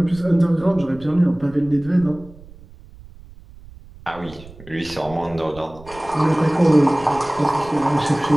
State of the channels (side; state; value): right; noise; rumble, 20 dB below the sound